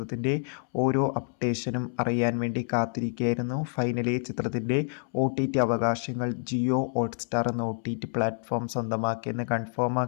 ഓരോ അപ്ഡേഷനും അറിയാൻ വേണ്ടി കാത്തിരിക്കുകയായിരുന്നു. ഫൈനലി ചിത്രത്തിൻ്റെ OTT അവകാശങ്ങൾ ജിയോ ഹോട്ട്സ്റ്റാർ എന്ന OTT പ്ലാറ്റ്ഫോം സ്വന്തമാക്കിയെന്ന് കൺഫേം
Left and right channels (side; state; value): right; silent; 59 dB below the other